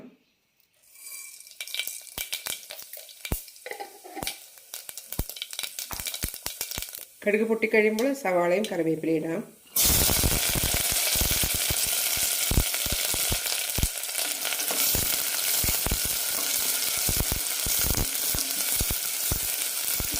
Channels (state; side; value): identical; both; correlation 1.00